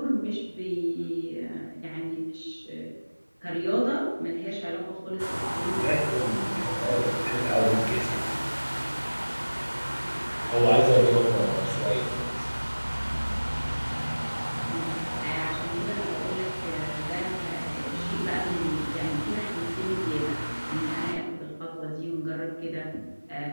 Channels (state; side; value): inverted; both; correlation -1.00